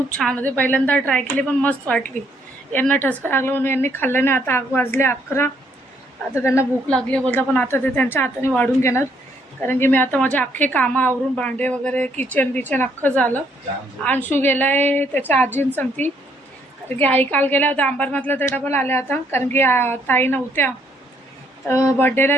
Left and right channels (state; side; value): normal; both; correlation 0.69